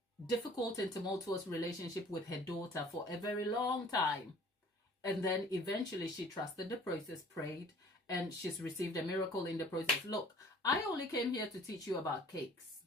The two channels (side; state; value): both; normal; correlation 0.51